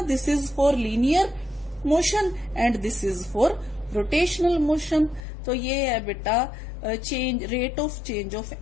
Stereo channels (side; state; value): right; drops out; at 5.2 s